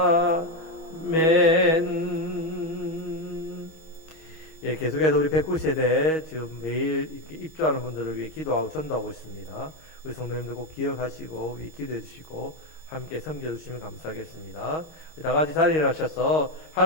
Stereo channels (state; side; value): late; right; 11 ms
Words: 아멘. 예, 계속해서 우리 109세대 지금 매일 이렇게 입주하는 분들을 위해 기도하고 전도하고 있습니다. 우리 성도님들 꼭 기억하시고 기도해 주시고 함께 섬겨주시면 감사하겠습니다. 다 같이 자리에 일어나셔서